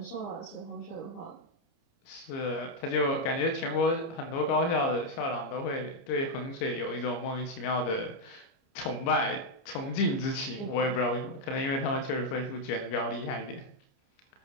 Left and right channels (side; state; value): right; late; 29 ms